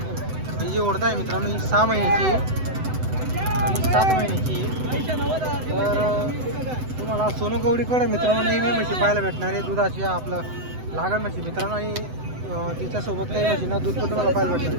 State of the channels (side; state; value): left; late; 7.9 ms